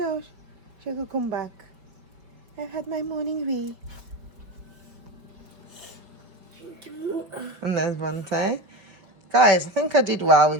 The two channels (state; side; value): late; left; 5.1 ms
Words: She could come back. I've had my morning wee. And there's Lavonte. Guys, I think I did well